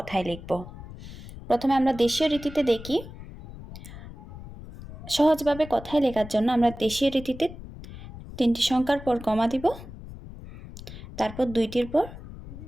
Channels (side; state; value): left; noise; rumble, 14 dB below the sound